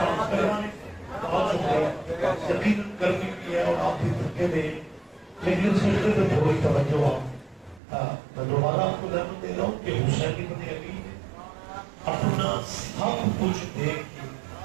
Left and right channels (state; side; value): drops out; left; at 7.8 s